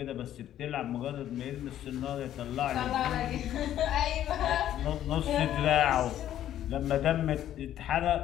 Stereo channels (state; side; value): quieter; right; 11.7 dB